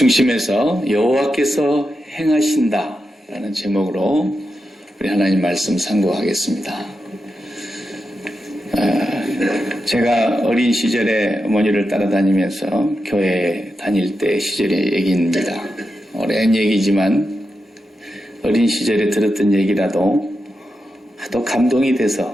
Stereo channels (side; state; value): both; normal; correlation 0.88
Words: 여호와께서 행하신다라는 제목으로 우리 하나님 말씀 상고하겠습니다. 제가 어린 시절에 어머니를 따라다니면서 교회 다닐 때 시절의 얘기입니다. 오랜 얘기지만 어린 시절에 들었던 얘기라도 하도 감동이